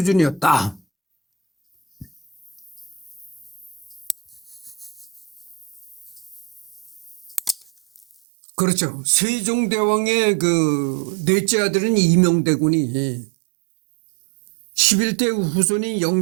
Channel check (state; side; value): drops out; left; at 8.2 s